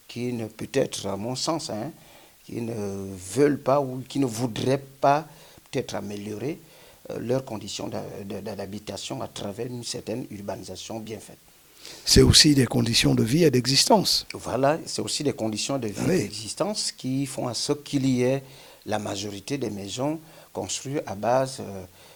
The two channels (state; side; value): identical; both; correlation 1.00